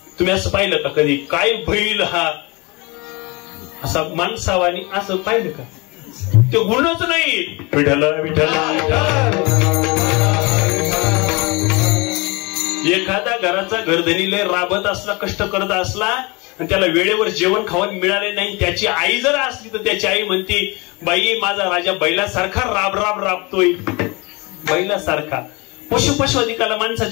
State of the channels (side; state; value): right; quieter; 26.4 dB